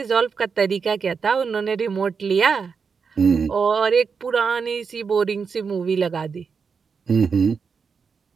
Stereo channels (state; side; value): quieter; left; 5.7 dB